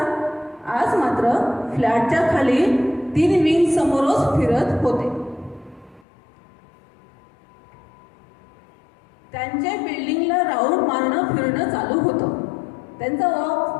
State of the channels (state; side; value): drops out; right; at 6.1 s